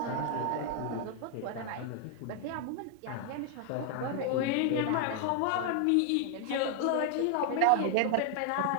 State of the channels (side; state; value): both; different; correlation 0.00